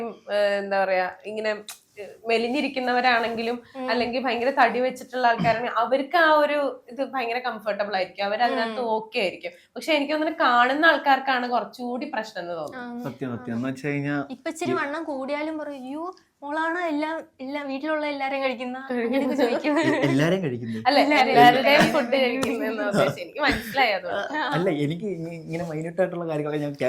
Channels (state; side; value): identical; both; correlation 1.00